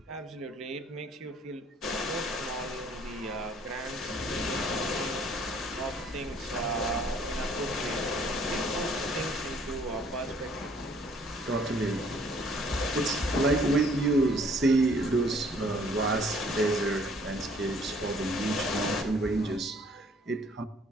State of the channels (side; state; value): both; normal; correlation 0.60